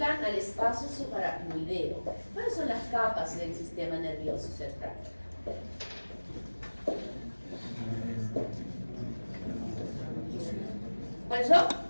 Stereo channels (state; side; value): inverted; both; correlation -1.00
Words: al espacio subaracnoideo, ¿cuáles son las capas del sistema nervioso central? ¿Cuáles son?